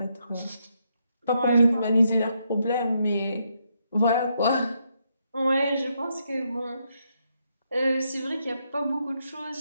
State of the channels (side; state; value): both; inverted; correlation -0.78